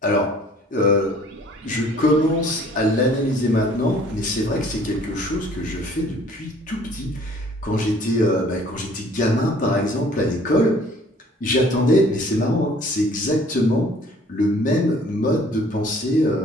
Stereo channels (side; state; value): both; normal; correlation 0.54